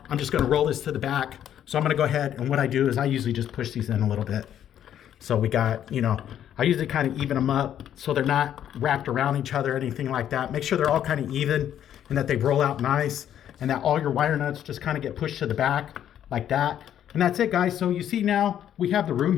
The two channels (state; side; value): quieter; right; 10.3 dB